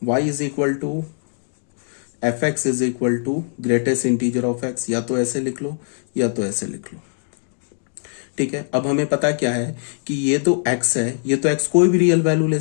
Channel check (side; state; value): right; silent; digital silence